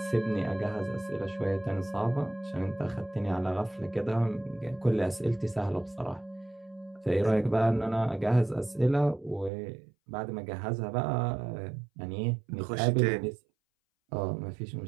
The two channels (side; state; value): left; drops out; at 9.5 s